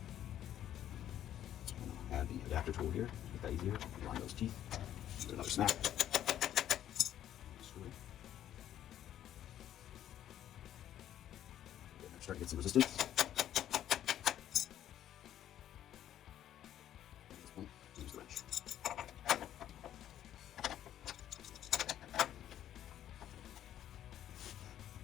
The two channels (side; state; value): right; quieter; 11.3 dB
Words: Add the adapter tool here, make that easier. Line those teeth. Do another snap. Screw it. Start to get some resistance. At this point, use the wrench.